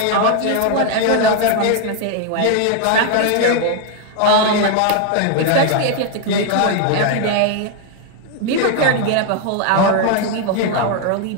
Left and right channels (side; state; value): both; different; correlation 0.00